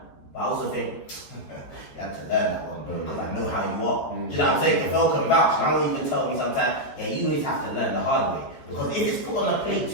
But I also think, you had to learn that one, bro, because I know how you are. Do you know what I'm saying? If Phil can vouch, and I will even tell me sometimes, yeah, you always have to learn the hard way. Because if it's put on a plate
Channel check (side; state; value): right; late; 14 ms